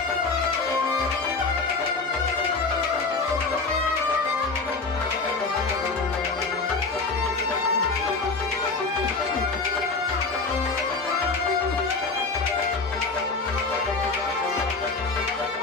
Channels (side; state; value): right; quieter; 4.0 dB